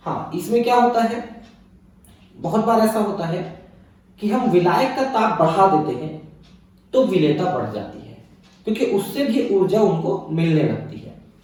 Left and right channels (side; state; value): both; identical; correlation 1.00